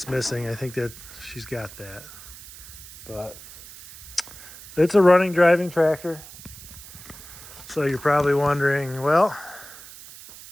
missing. I think that she's got that. But it's a running, driving tractor. So you're probably wondering, well,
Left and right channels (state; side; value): noise; right; hiss, 17 dB below the sound